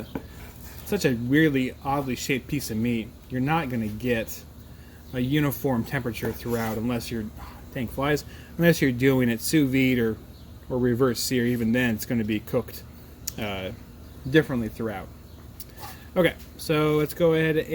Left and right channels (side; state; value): both; identical; correlation 1.00